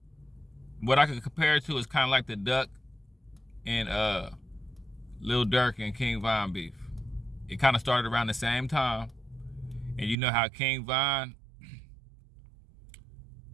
what I could compare it to is kind of like the Duck and Lil Durk and King Von beef. It kind of started around the same time. And you know how King Von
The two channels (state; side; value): drops out; left; at 10.2 s